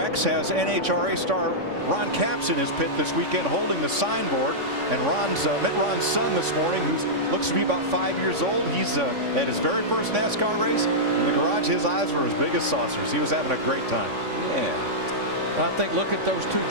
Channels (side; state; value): left; late; 3.5 ms